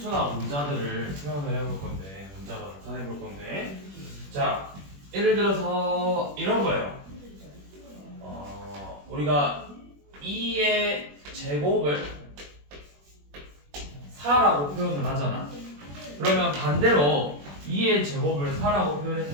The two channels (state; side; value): late; left; 21 ms